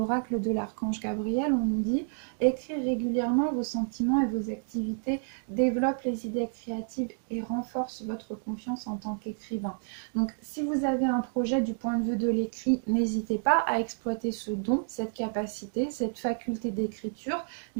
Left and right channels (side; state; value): left; silent; 58 dB below the other